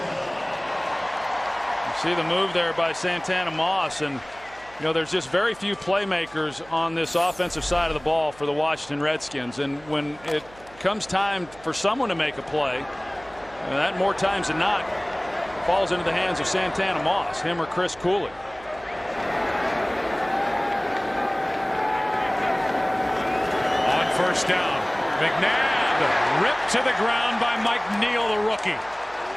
You see the move there by Santana Moss, and you know, there's just very few playmakers on this offensive side of the ball for the Washington Redskins, and when it comes time for someone to make a play, and that more times than not falls into the hands of Santana Moss, him or Chris Cooley. On first down, McNabb ripped to the ground by Mike Neal, the rookie.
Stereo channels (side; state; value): right; noise; hum, 23 dB below the sound